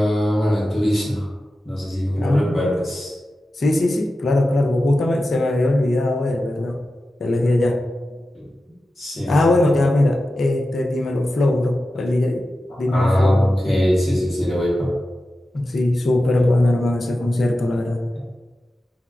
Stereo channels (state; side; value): normal; both; correlation 0.93